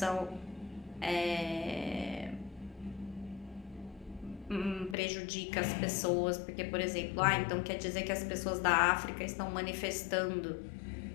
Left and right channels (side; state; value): right; drops out; at 5.0 s